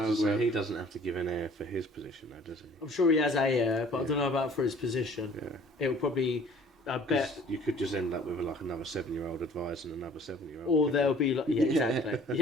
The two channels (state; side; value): normal; both; correlation 0.52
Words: was gonna say, grab. he doesn't have to give an heir for his position, though, does he? I'm sure he has a heir, but I Yeah. don't know about for his position. Yeah. It'll probably, I bet, 'Cause you could just end up with like another 7-year-old advisor and another 7-year-old. or there'll be like, yeah, exactly.